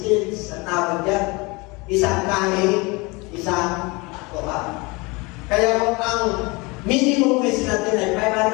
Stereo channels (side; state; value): right; quieter; 26.0 dB